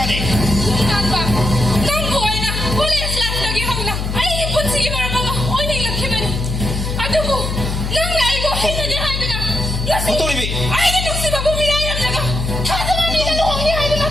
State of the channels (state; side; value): noise; left; hum, 3 dB below the sound